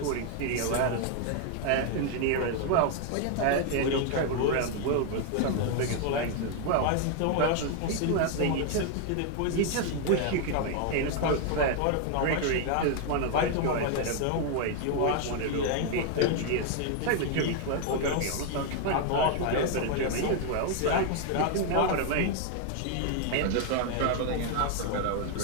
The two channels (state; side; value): different; both; correlation 0.00